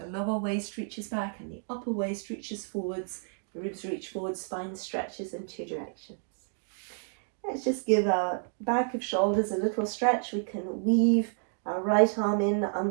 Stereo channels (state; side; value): silent; left; digital silence